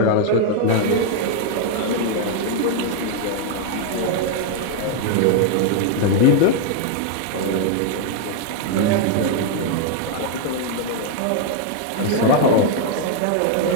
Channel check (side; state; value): both; different; correlation 0.00